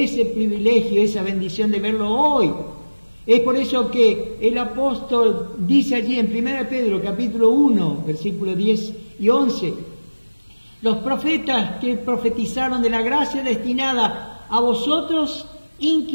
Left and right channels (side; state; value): both; inverted; correlation -1.00